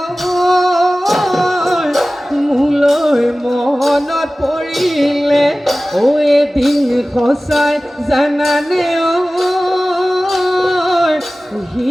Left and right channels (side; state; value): both; normal; correlation 0.97